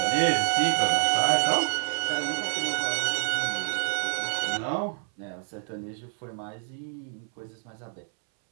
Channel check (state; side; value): silent; left; 60 dB below the other